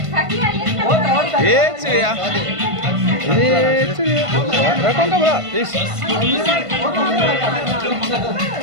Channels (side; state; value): left; late; 1.5 ms